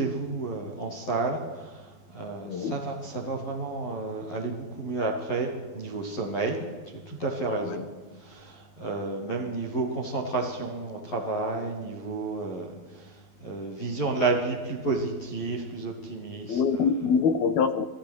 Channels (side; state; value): right; late; 11 ms